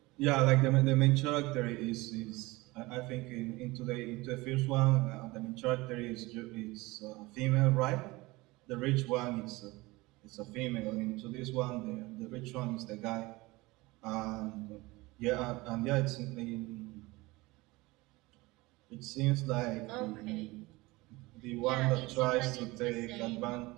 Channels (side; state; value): left; quieter; 21.8 dB